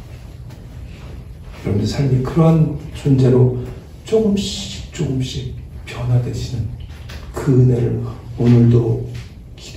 여러분의 삶이 그러한 존재로 조금씩 변화되시는 그 은혜를 오늘도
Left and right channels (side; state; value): both; identical; correlation 1.00